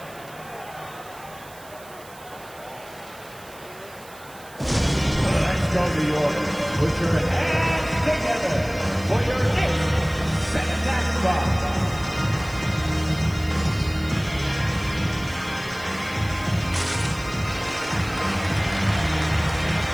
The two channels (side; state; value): right; noise; hiss, 21 dB below the sound